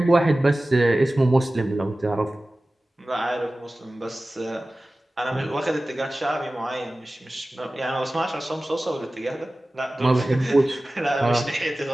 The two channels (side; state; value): both; normal; correlation 0.97